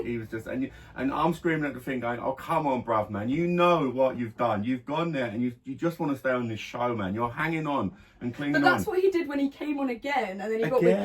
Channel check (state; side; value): identical; both; correlation 1.00